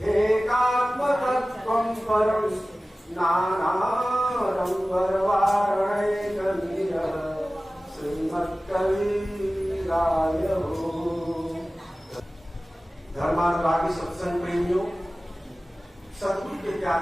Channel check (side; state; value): both; normal; correlation 0.97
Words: एकात्मतत्त्वं परं नानारंगरवारणैकनीरः श्रीमत्कविराय धर्मानुरागी सत्संग प्रेमियों, सतगुरु के